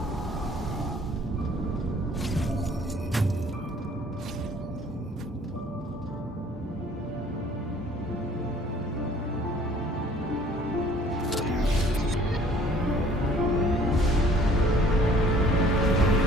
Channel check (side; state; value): both; normal; correlation 0.55